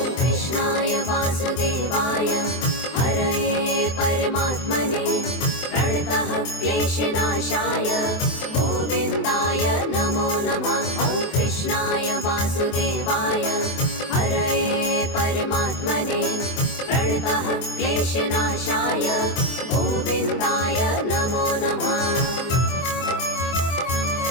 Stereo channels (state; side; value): late; right; 23 ms